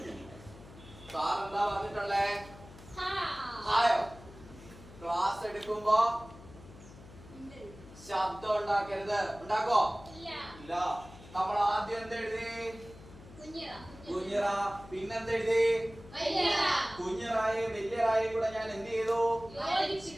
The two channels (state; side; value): noise; left; hum, 18 dB below the sound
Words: സാറെന്താ പറഞ്ഞിട്ടുള്ളേ? ഹായോ? ക്ലാസ് എടുക്കുമ്പോ ശബ്ദം ഉണ്ടാക്കരുത്. ഉണ്ടാക്കോ? ഇല്ല. നമ്മൾ ആദ്യം എന്തെഴുതി? കുഞ്ഞറ. പിന്നെന്തെഴുതി? കുഞ്ഞറായും വലിയറായും കൂടെ ഞാൻ എന്ത് ചെയ്തു?